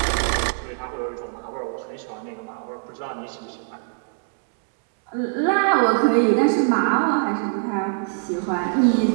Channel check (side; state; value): left; silent; digital silence